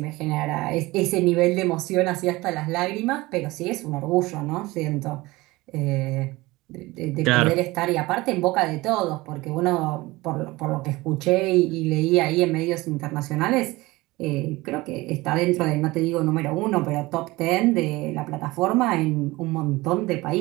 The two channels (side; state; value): left; quieter; 20.7 dB